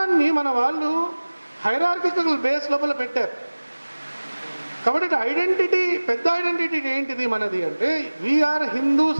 మన వాళ్ళు హైరార్కికల్ బేస్ లోపల పెట్టారు. కాబట్టి ఐడెంటిటీ, పెద్ద ఐడెంటిటీ ఏంటిది మనది అంటే వీఆర్ హిందూస్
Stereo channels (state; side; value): inverted; both; correlation -1.00